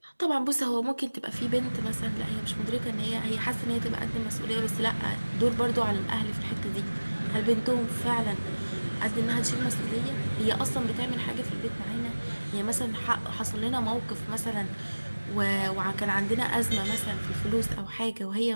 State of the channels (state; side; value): inverted; both; correlation -1.00